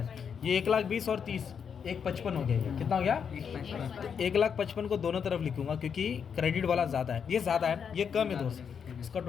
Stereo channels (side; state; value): right; quieter; 7.0 dB